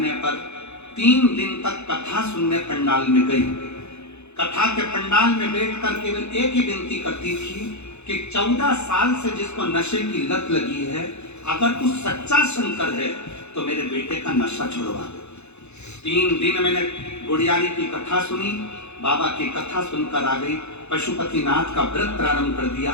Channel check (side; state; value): right; late; 0.81 ms